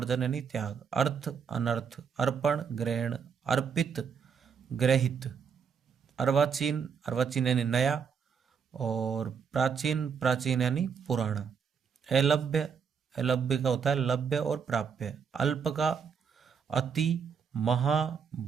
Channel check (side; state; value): left; quieter; 6.5 dB